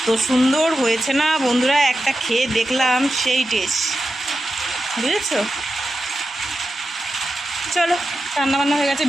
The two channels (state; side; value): normal; both; correlation 0.90